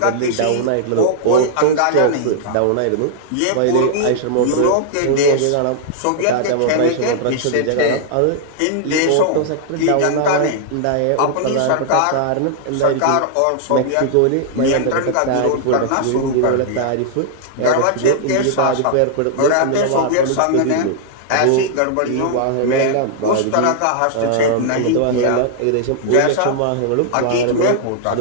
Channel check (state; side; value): different; both; correlation -0.01